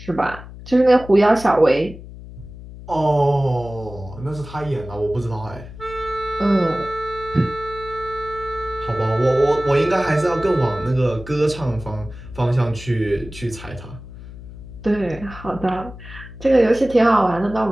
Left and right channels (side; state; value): left; noise; hum, 15 dB below the sound